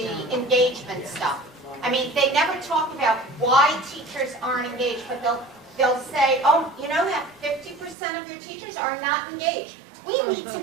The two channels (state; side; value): drops out; left; at 8.0 s